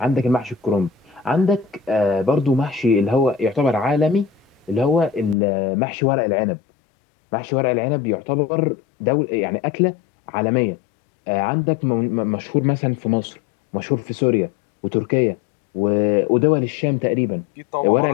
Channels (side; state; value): right; drops out; at 5.4 s